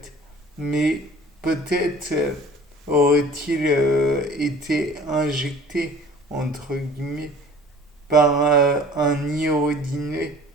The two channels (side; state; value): both; normal; correlation 0.47